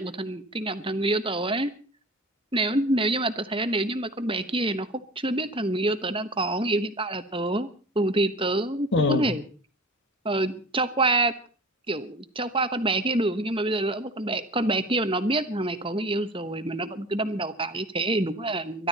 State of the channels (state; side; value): normal; both; correlation 0.38